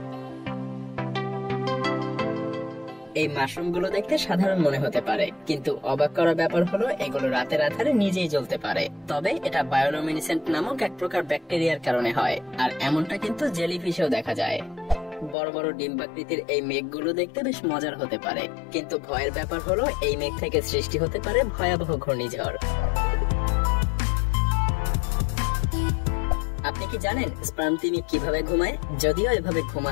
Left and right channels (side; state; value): right; drops out; at 15.4 s